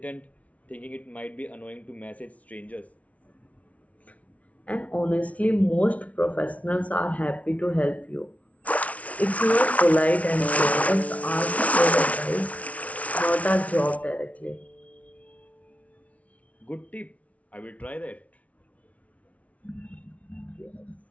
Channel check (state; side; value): late; right; 0.067 ms